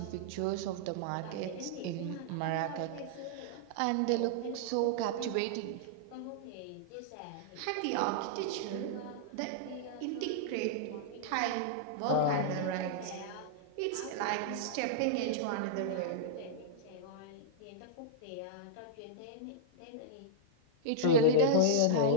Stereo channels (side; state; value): both; different; correlation -0.02